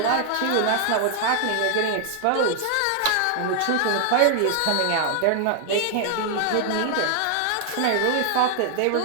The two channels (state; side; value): different; both; correlation 0.00